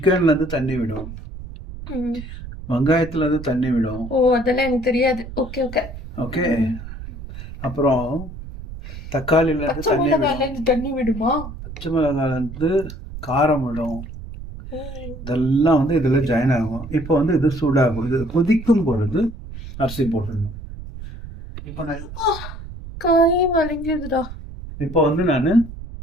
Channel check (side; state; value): right; noise; rumble, 12 dB below the sound